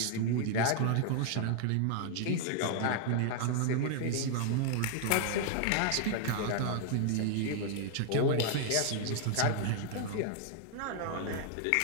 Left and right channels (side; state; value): both; different; correlation 0.00